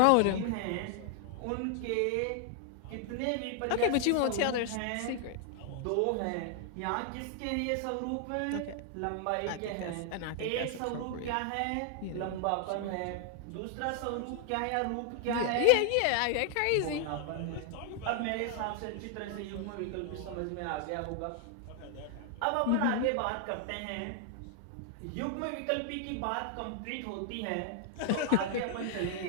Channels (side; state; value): both; different; correlation 0.00